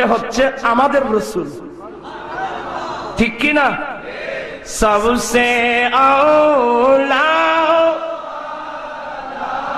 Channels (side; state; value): both; identical; correlation 1.00